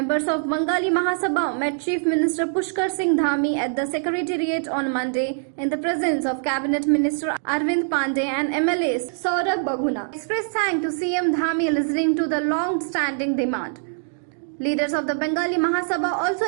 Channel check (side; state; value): left; silent; digital silence